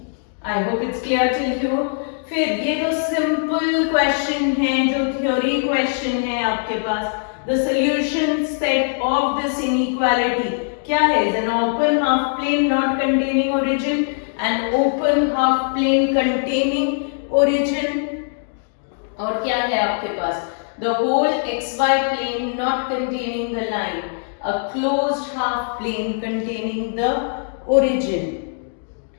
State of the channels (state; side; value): silent; right; digital silence